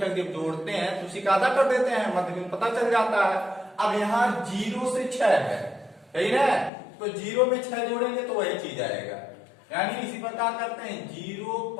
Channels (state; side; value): drops out; right; at 6.7 s